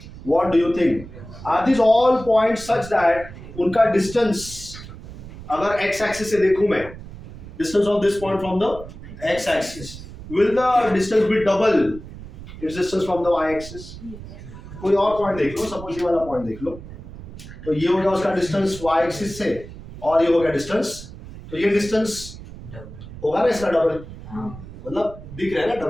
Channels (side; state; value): right; noise; rumble, 14 dB below the sound